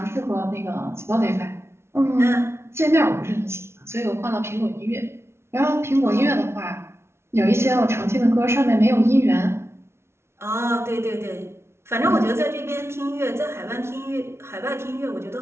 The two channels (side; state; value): left; late; 0.12 ms